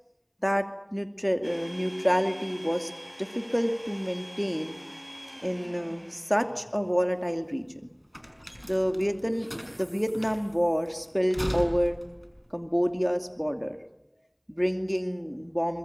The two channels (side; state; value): both; identical; correlation 1.00